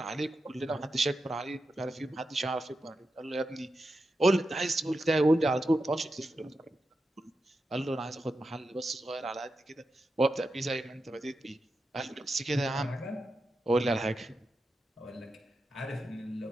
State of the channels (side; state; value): both; normal; correlation 0.89